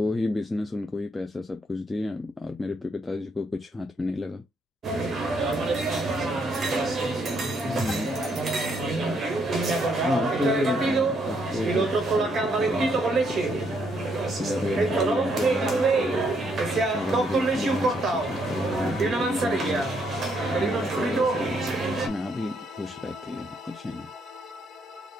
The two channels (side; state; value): both; normal; correlation 0.73